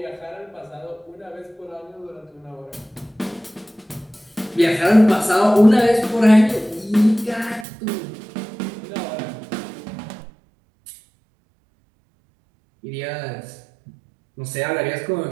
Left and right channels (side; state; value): left; drops out; at 7.7 s